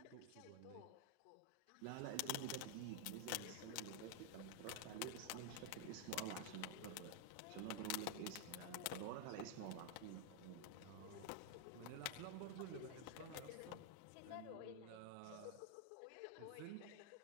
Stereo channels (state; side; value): different; both; correlation 0.00